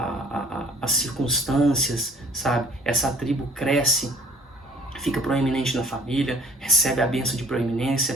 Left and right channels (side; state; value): both; normal; correlation 0.53